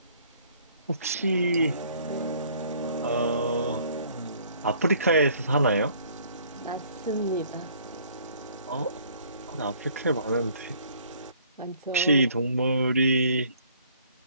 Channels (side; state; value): both; inverted; correlation -0.59